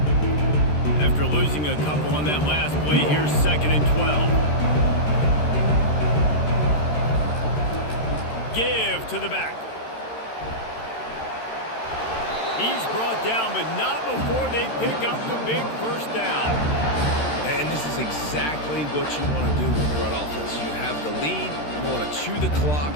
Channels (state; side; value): late; right; 13 ms